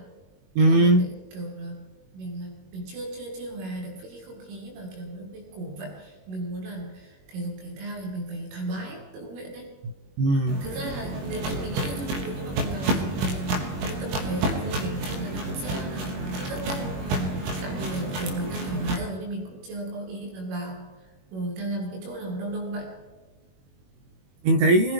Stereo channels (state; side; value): late; left; 21 ms